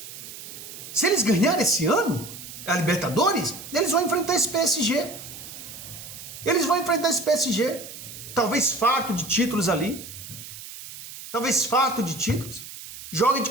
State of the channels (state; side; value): noise; right; hiss, 13 dB below the sound